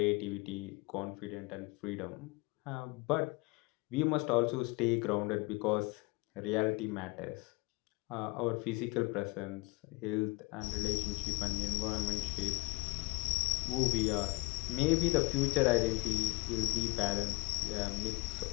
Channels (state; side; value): quieter; right; 25.6 dB